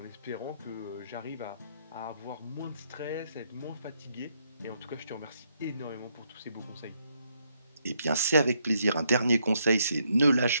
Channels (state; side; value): inverted; both; correlation -0.75